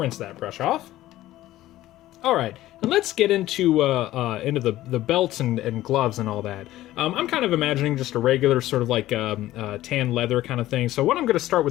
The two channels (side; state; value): right; quieter; 15.1 dB